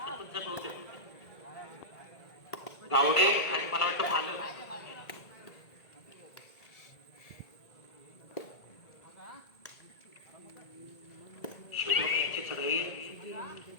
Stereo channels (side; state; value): right; late; 1.8 ms